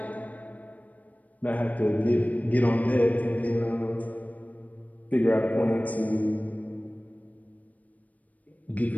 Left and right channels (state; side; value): late; right; 0.072 ms